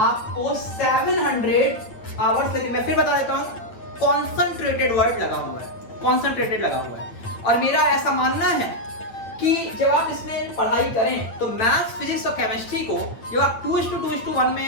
700 आवर्स से, मैं फिर बता देता हूं, कॉन्सेंट्रेटेड वर्ड लगा हुआ है, कॉन्सेंट्रेटेड लगा हुआ है। और मेरा ऐसा मानना है कि जब आप इसमें पढ़ाई करें तो मैथ्स, फिजिक्स और केमिस्ट्री को जब आप 2:2:1 में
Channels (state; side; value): late; right; 9.1 ms